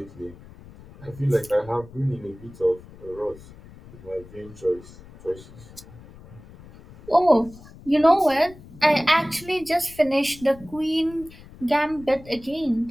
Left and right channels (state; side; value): noise; left; rumble, 20 dB below the sound